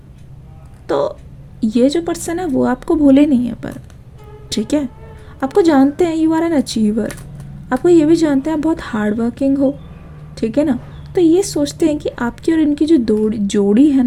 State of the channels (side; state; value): both; identical; correlation 1.00